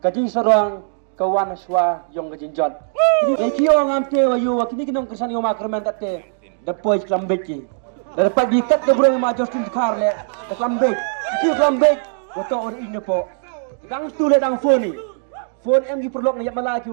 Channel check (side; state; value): left; silent; digital silence